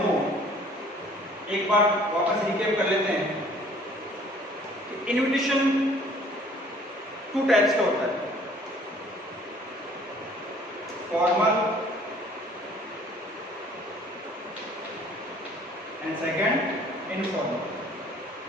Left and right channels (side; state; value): both; normal; correlation 0.55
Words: एक बार वापस रिकैप कर लेते हैं। इन्विटेशन 2 टाइप्स का होता है, formal and second informal.